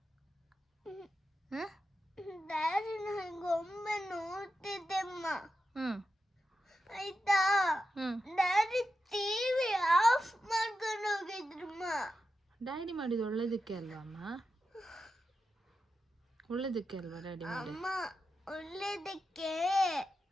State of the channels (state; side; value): normal; both; correlation 0.89